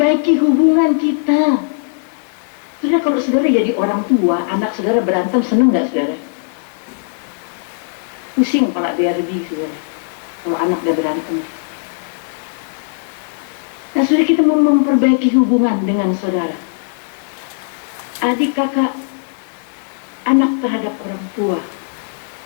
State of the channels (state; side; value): silent; right; digital silence